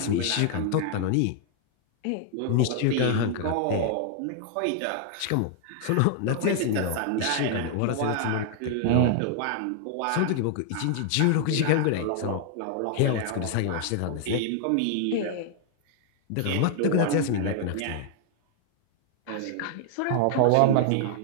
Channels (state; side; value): different; both; correlation 0.00